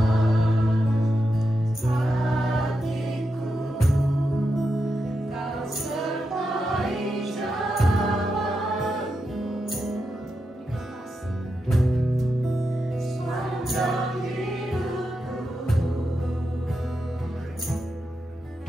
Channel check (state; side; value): normal; both; correlation 0.87